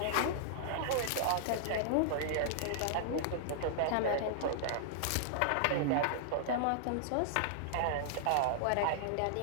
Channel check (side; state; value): both; different; correlation -0.01